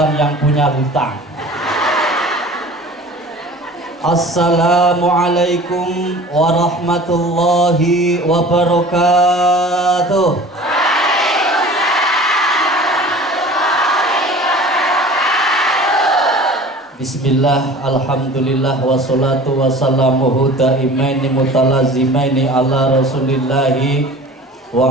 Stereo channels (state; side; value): normal; both; correlation 0.42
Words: yang punya hutang. Assalamualaikum warahmatullahi wabarakatuh. Bismillah, alhamdulillah, wassalatu wassalamuhu daimaini mutalazimaini ala rasulillahi